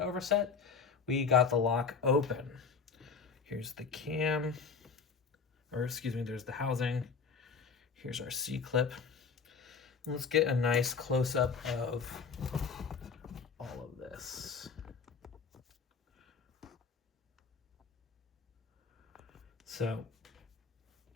overset, we got the lock open. Here's the cam, or excuse me, there's the housing. Here's our C-clip. Let's get a nice close-up of all of this. So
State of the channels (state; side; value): quieter; right; 5.5 dB